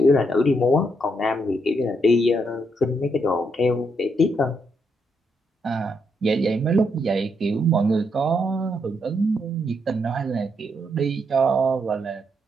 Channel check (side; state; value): both; normal; correlation 0.78